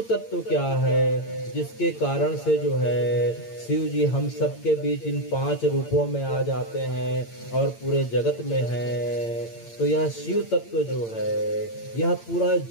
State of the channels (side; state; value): right; late; 8.8 ms